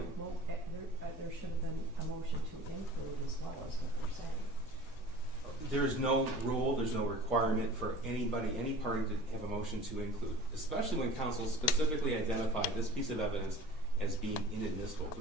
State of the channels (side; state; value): both; normal; correlation 0.42